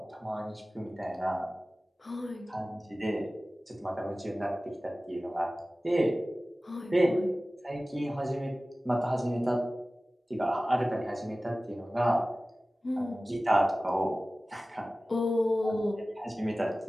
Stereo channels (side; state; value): both; normal; correlation 0.97